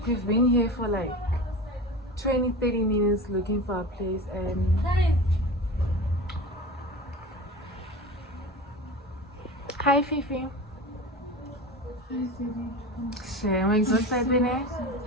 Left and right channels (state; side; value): normal; both; correlation 0.31